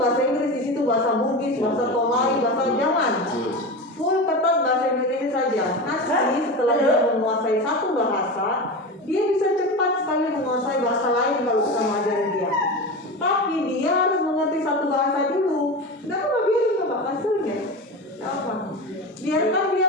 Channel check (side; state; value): both; normal; correlation 0.25